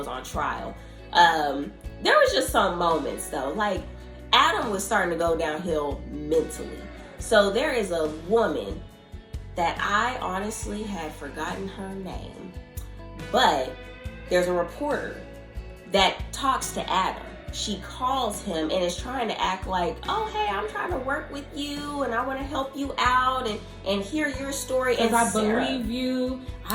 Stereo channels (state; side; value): identical; both; correlation 1.00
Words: on trial. There was just some moments though, like Adam was starting to go downhill mentally. So there is a woman that I honestly had forgotten her name, but there's a reporter that talks to Adam. She calls him and is trying to act like, oh, hey, I'm trying to work with you and I want to help you out and hear your story. And I believe you.